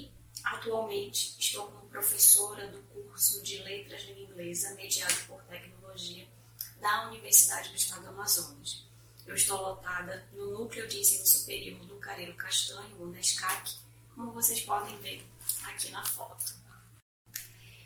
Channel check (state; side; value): identical; both; correlation 1.00